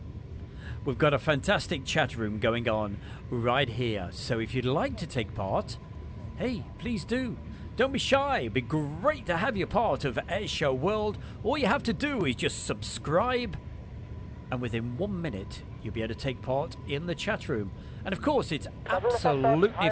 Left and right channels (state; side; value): identical; both; correlation 1.00